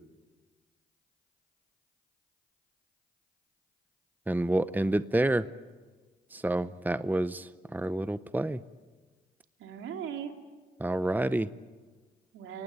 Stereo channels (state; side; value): normal; both; correlation 0.92